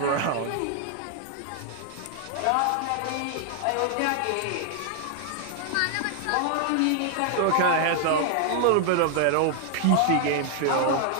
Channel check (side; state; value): both; different; correlation 0.00